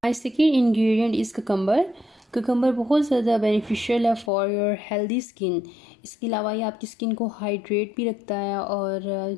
My second ingredient is cucumber. Cucumber बहुत ज़्यादा बेनिफिशियल है फॉर योर हेल्दी स्किन। इसके अलावा ये आपकी स्किन को हाइड्रेट भी रखता है और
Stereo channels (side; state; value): right; drops out; at 4.3 s